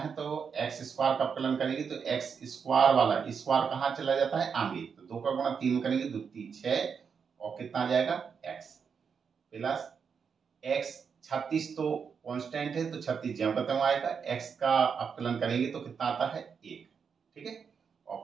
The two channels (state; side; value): quieter; left; 6.3 dB